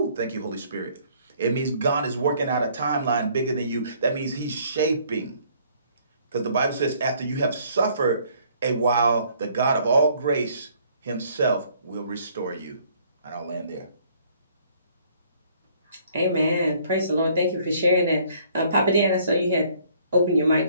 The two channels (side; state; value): both; inverted; correlation -0.61